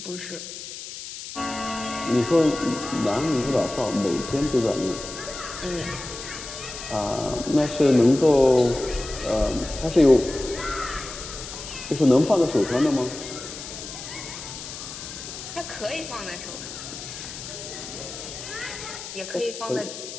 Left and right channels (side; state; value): left; noise; hiss, 10 dB below the sound